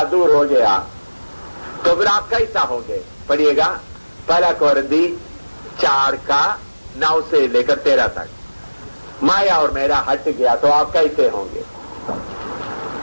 दूर हो गया तो फिर आप कैसा होंगे? पढ़िएगा, पहला कोरिन्थी 4:9 से लेकर 13 तक। माया और मेरा हट गया तो आप कैसे होंगे?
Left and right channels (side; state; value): both; inverted; correlation -1.00